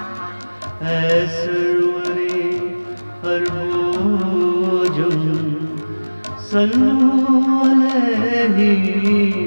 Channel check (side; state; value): both; inverted; correlation -1.00